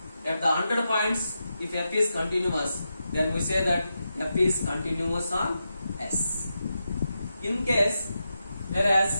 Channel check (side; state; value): both; inverted; correlation -0.88